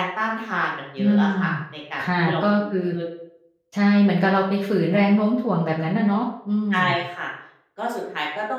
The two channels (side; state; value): both; identical; correlation 1.00